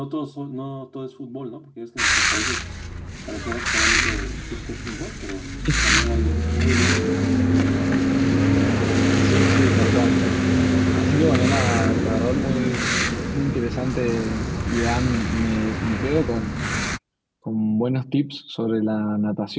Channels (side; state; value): both; identical; correlation 1.00